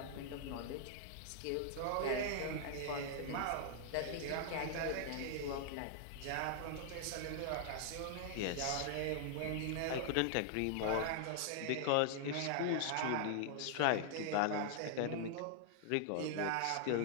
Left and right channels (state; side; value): different; both; correlation -0.01